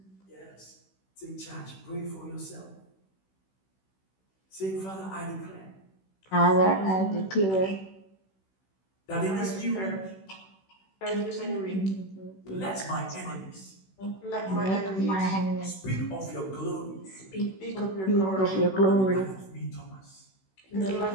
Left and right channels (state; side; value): late; right; 16 ms